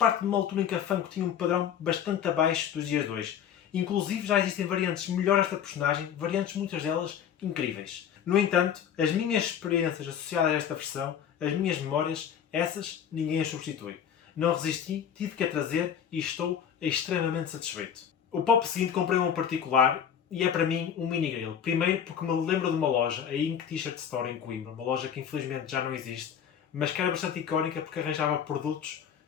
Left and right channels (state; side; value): quieter; right; 8.6 dB